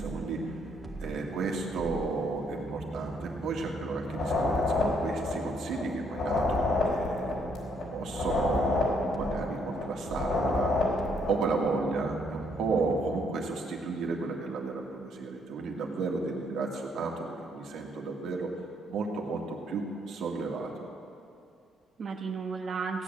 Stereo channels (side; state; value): both; normal; correlation 0.70